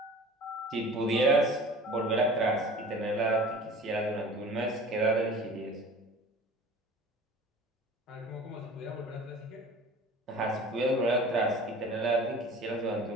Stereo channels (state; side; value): normal; both; correlation 0.42